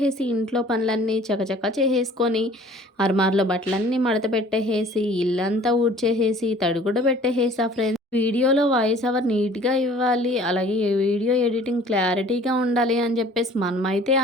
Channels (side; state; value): both; normal; correlation 0.51